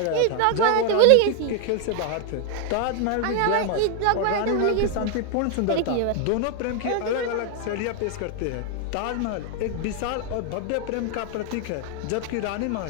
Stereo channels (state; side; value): different; both; correlation 0.00